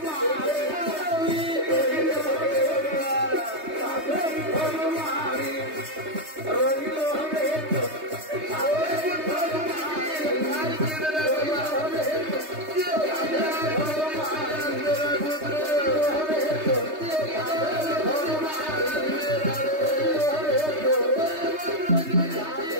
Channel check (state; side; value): late; left; 3.2 ms